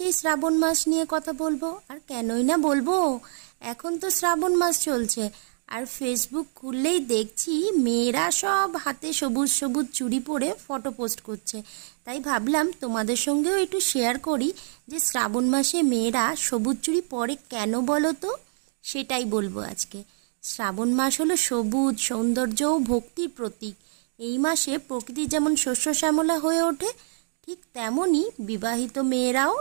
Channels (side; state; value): left; silent; digital silence